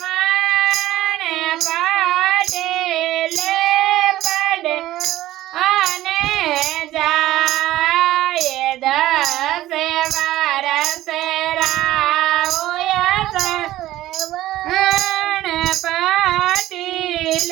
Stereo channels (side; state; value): left; quieter; 15.1 dB